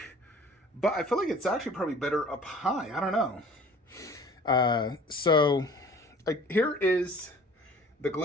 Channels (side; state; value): both; normal; correlation 0.48